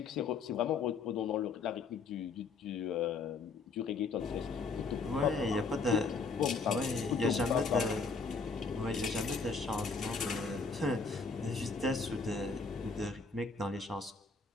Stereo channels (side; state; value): right; quieter; 4.4 dB